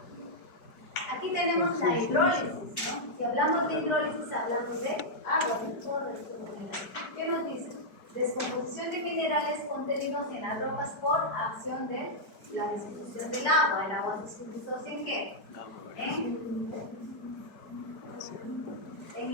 Aquí tenemos la hidrólisis, ¿no? Si hablamos de hidrólisis, hablamos de agua, de todo esto de minerales. ¿Qué nos dice? Descomposición de minerales contenidos en las rocas por acción de la disolución del agua. ¿El agua se disocia en qué? En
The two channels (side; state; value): right; late; 4.9 ms